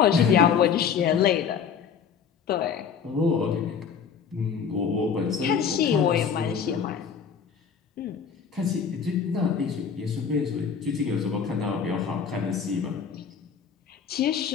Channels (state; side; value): quieter; right; 6.9 dB